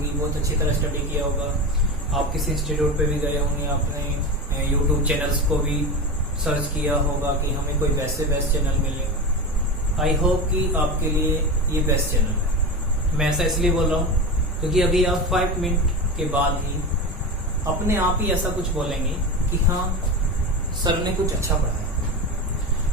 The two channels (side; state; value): both; normal; correlation 0.23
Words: बहुत अच्छी तरह स्टडी किया होगा। आप किसी इंस्टीट्यूट पे भी गए होंगे, आपने YouTube चैनल्स को भी सर्च किया होगा कि हमें कोई बेस्ट चैनल मिले। आई होप कि आपके लिए ये बेस्ट चैनल है। मैं ऐसा इसलिए बोल रहा हूँ क्योंकि अभी आप 5 मिनट के बाद ही अपने आप ही ऐसा कुछ बोलेंगे कि हाँ सर ने कुछ अच्छा